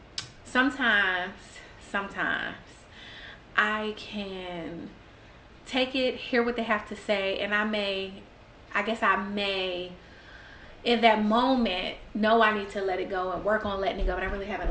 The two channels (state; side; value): identical; both; correlation 1.00